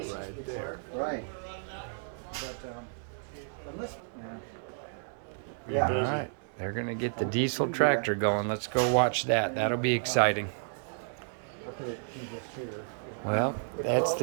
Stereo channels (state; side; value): silent; left; digital silence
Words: right there. right. All right, they're gonna get the diesel tractor going. Let's go watch that. That'll be exciting. Well, that's